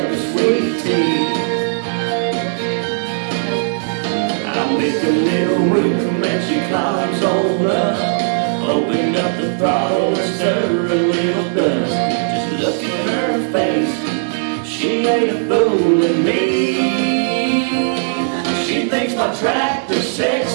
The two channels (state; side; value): silent; left; digital silence